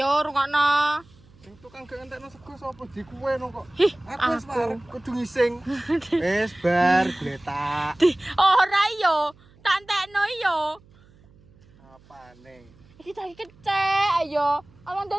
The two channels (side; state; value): right; noise; hum, 28 dB below the sound